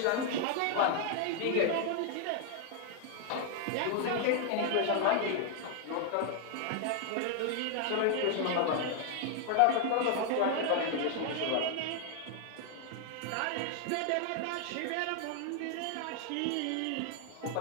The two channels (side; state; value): both; different; correlation 0.00